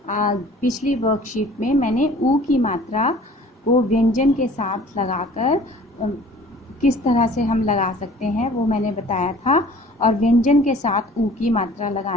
पिछली वर्कशीट में मैंने ऊ की मात्रा को व्यंजन के साथ लगाकर किस तरह से हम लगा सकते हैं वो मैंने बताया था, और व्यंजन के साथ ऊ की मात्रा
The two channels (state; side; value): normal; both; correlation 0.49